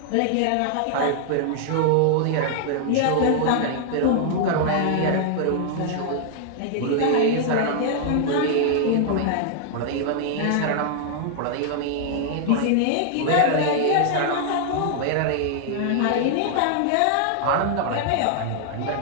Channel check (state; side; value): different; both; correlation -0.01